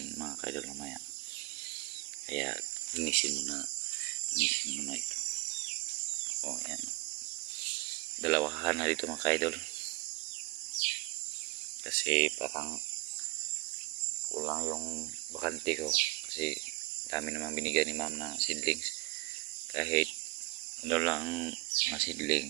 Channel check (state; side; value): quieter; left; 23.1 dB